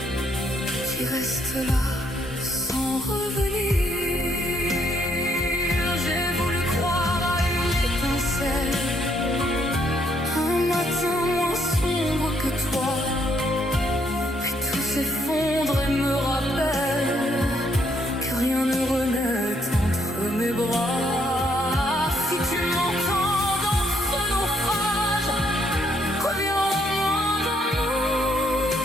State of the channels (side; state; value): both; normal; correlation 0.71